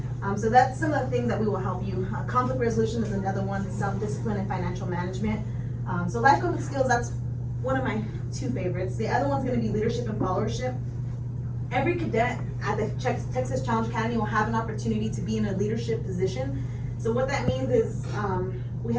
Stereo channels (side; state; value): both; identical; correlation 1.00